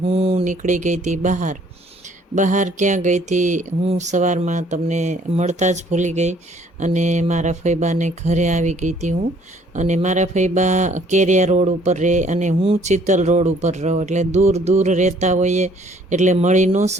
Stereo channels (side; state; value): both; normal; correlation 0.60